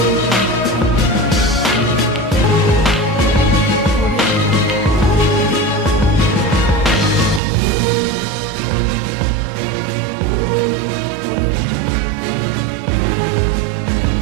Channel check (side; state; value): left; drops out; at 7.4 s